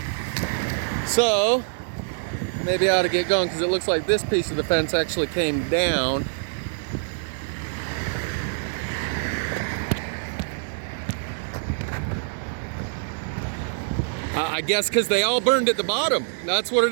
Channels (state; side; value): silent; left; digital silence